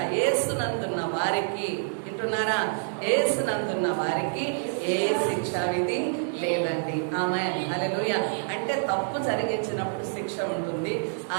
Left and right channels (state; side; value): silent; left; 60 dB below the other